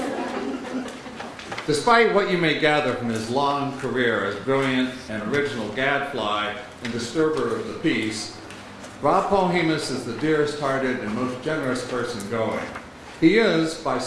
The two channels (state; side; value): identical; both; correlation 1.00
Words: Despite what you may gather from his long career as brilliant and original gadfly and disturber of the peace, Rob Polhemus is the dearest-hearted and most generous person going. He is, by